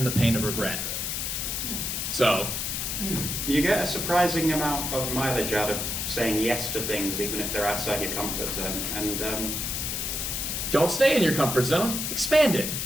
the pain of regret. So. You get a surprising amount of mileage out of saying yes to things, even if they're outside your comfort zone. And Don't stay in your comfort zone, expand it.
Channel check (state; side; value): noise; left; hiss, 2 dB below the sound